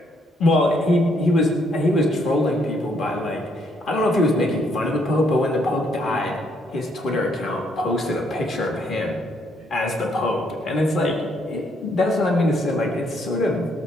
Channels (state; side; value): normal; both; correlation 0.71